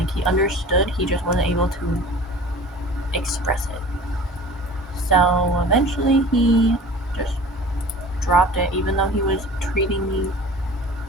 he understood, he just wasn't able to express it. So eventually he just dropped it, even though he was treating me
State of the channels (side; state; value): both; normal; correlation 0.41